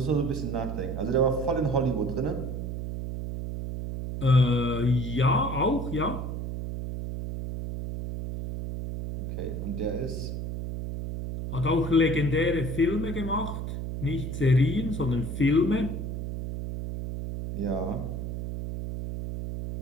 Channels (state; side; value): noise; right; hum, 5 dB below the sound